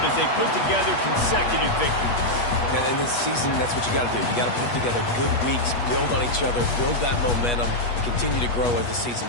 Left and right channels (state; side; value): late; right; 8.3 ms